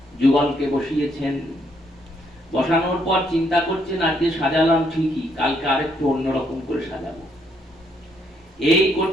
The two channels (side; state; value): both; normal; correlation 0.72